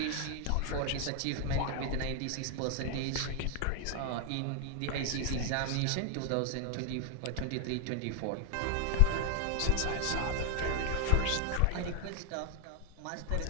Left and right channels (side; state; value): both; different; correlation 0.00